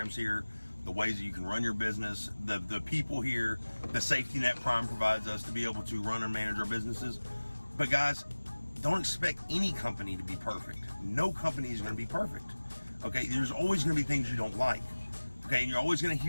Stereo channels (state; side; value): inverted; both; correlation -1.00